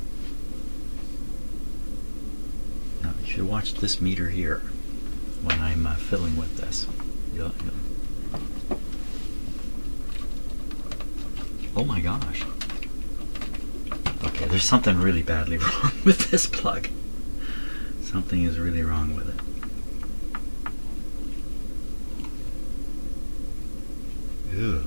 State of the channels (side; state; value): both; inverted; correlation -1.00